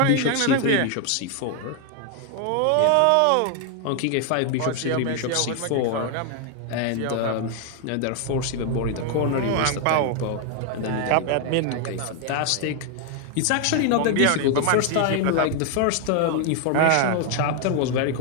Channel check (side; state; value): both; different; correlation 0.01